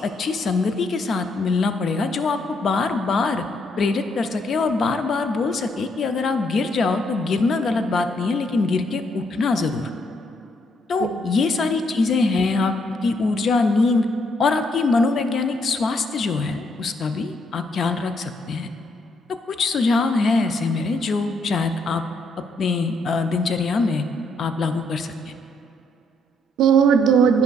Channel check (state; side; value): normal; both; correlation 0.72